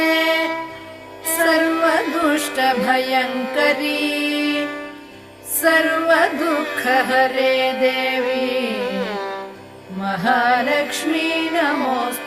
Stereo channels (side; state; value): both; identical; correlation 1.00